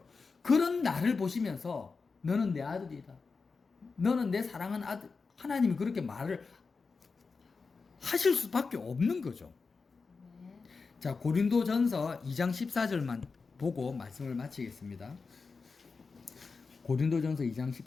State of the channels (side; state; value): right; quieter; 4.6 dB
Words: 그런 나를 보시면서 너는 내 아들이다. 너는 내 사랑하는 아들. 하나님이 그렇게 말을 하실 수밖에 없는 거죠. 아멘. 자, 고린도전서 2장 14절만 보고 말씀을 마치겠습니다. 고린도전서 2장